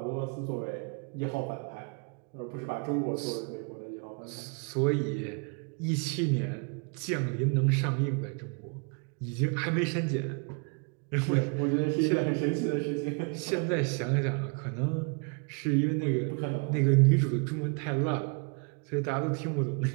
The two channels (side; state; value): left; quieter; 36.9 dB